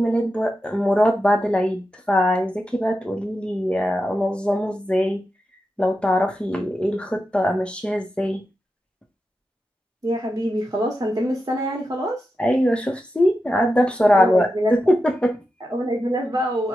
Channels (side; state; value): both; normal; correlation 0.89